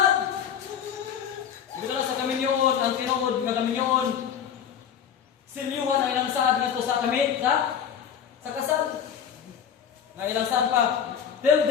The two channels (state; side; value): quieter; right; 8.3 dB